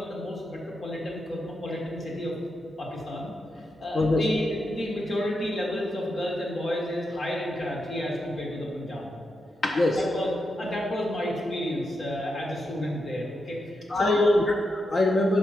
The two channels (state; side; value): normal; both; correlation 0.85